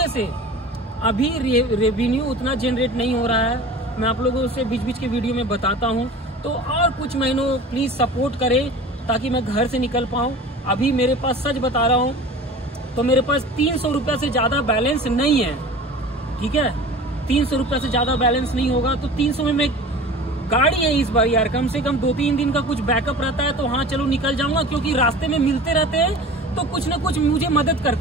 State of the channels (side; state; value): both; normal; correlation 0.39